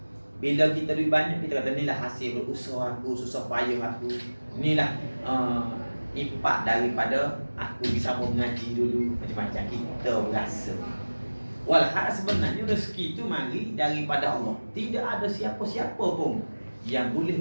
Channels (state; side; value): inverted; both; correlation -1.00